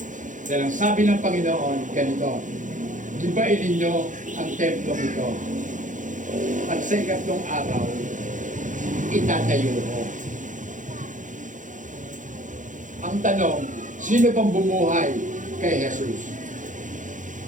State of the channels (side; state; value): left; late; 0.37 ms